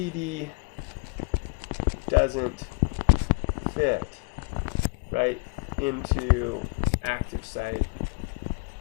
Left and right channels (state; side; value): quieter; right; 33.4 dB